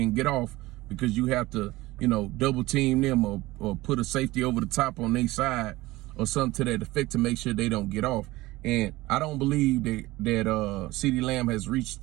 get off because you have to, double team them or put a safety over the top on their side or something to that effect to make sure they don't get off. And I don't believe that CeeDee Lamb has reached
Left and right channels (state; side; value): quieter; left; 19.0 dB